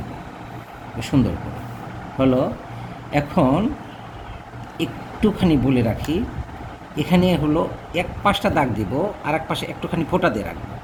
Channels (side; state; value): both; identical; correlation 1.00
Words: সুন্দর করে। হলো। এখন একটুখানি বলে রাখি, এখানে হলো এক পাশটা দাগ দিব, আর এক পাশে একটুখানি ফোঁটা দিয়ে রাখবো